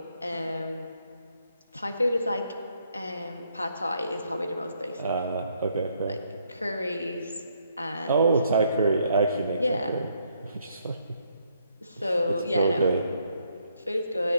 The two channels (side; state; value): both; inverted; correlation -0.72